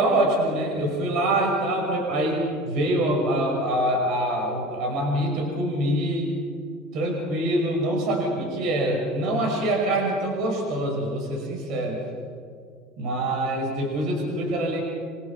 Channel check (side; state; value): both; normal; correlation 0.37